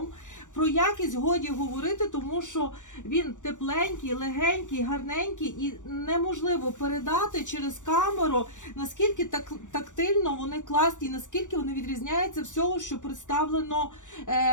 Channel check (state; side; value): late; right; 0.86 ms